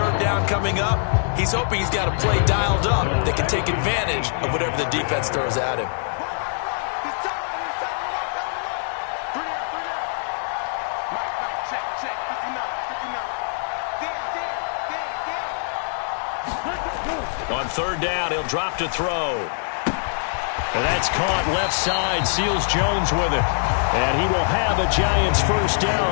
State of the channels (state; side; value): silent; right; digital silence